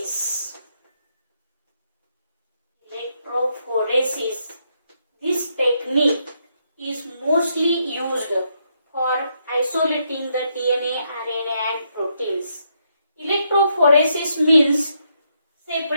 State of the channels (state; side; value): inverted; both; correlation -0.77